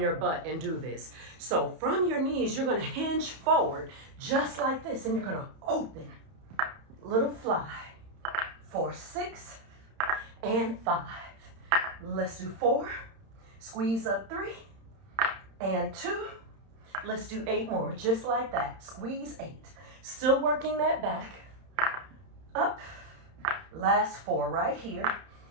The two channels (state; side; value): late; left; 31 ms